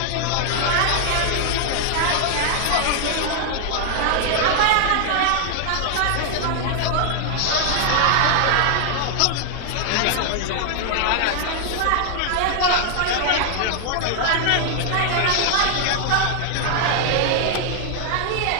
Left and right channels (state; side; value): different; both; correlation 0.00